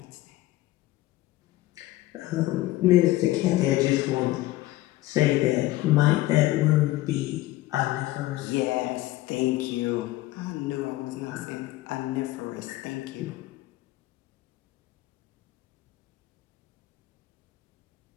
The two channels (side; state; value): right; quieter; 16.9 dB